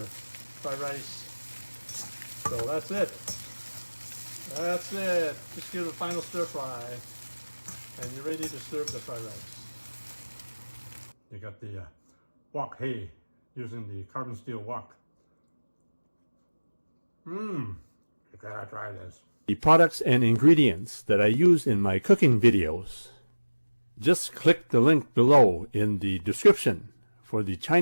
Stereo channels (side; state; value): both; inverted; correlation -1.00